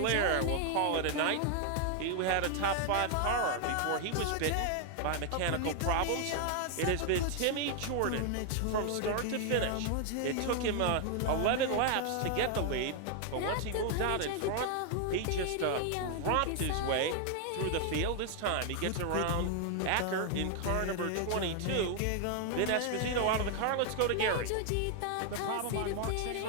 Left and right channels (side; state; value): both; different; correlation 0.00